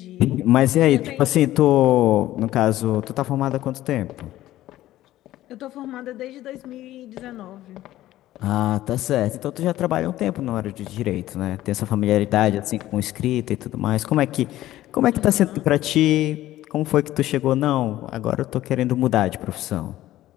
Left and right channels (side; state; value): right; quieter; 14.7 dB